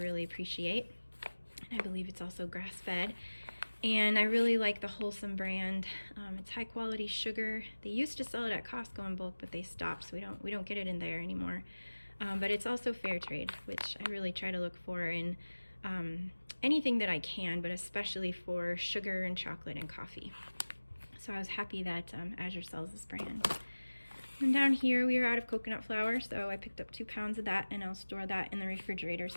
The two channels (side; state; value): both; inverted; correlation -1.00